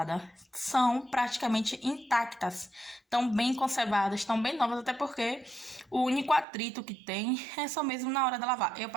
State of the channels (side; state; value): left; drops out; at 6.5 s